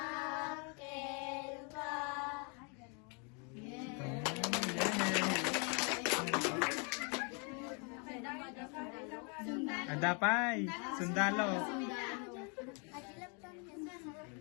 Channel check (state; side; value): quieter; right; 35.5 dB